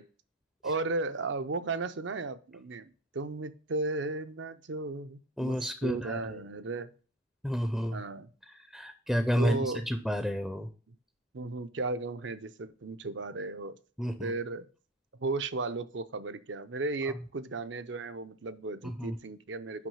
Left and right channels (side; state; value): both; normal; correlation 0.36